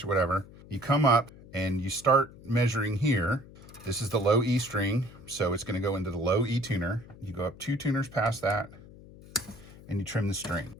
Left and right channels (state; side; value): noise; left; hum, 20 dB below the sound